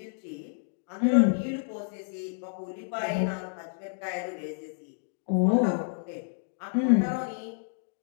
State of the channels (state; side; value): silent; right; digital silence